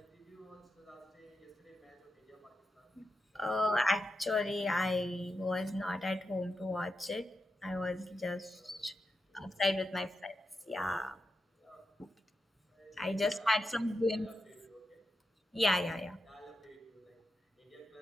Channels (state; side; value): normal; both; correlation 0.87